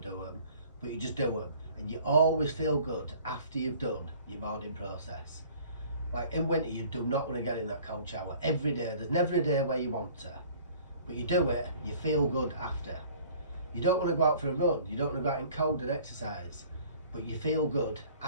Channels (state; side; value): inverted; both; correlation -0.51